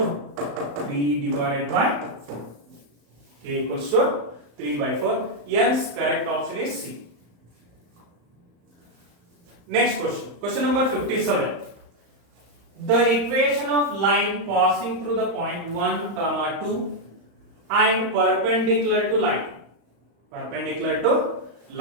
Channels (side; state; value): left; late; 35 ms